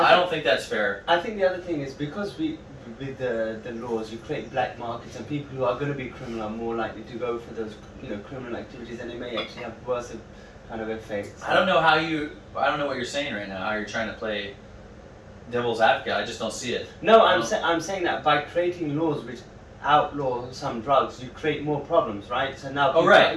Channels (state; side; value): identical; both; correlation 1.00